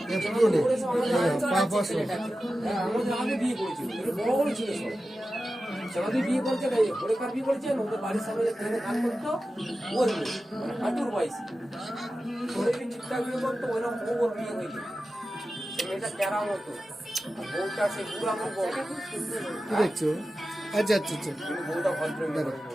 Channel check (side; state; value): both; normal; correlation 0.93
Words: ছেলেটাকে আমাদের আগে বিয়ে করেছিল বড় বড় ছিল সব আমাদের বিয়ে করেছে হরেকার বিয়ে করেছে ওদের বাড়ির সামনে ট্রেনে কাজ করতো ওর মেয়ে, মানে হাঁটুর বয়সী ওরে ঠিকঠাক বিয়ে করতো ওইরকম বউ ওর বিয়ে হয়ে গেছে। সে মেয়েটা ক্যারা মতো আর বউটা সে বুড়া আমার বউ খুব সুন্দর। কি দেখছো? আচ্ছা আচ্ছা আচ্ছা কিন্তু বউটা ভদ্র মেয়ে বড়